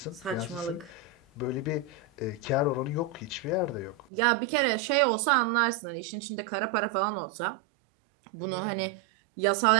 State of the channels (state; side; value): drops out; left; at 4.0 s